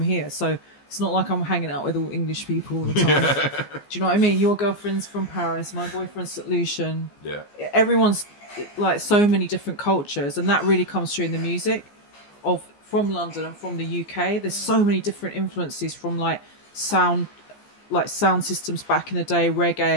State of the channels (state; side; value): late; right; 14 ms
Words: so it's not like I'm hanging out with all English people all the time. Do you know what I mean? Your girlfriend's from Paris, my boyfriend's St. Lucian. Yeah. Everyone's like so many different cultures, and that really comes through in the music from London and from the UK. There's so many different influences from sound systems back in the day,